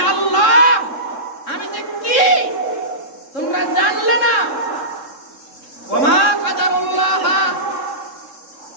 আল্লাহ, আমি যে কি তোমরা জানলে না। ওমা কাদারুল্লাহ,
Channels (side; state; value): right; late; 3.7 ms